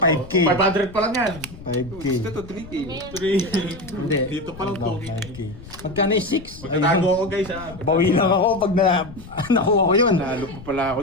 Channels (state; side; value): noise; left; rumble, 16 dB below the sound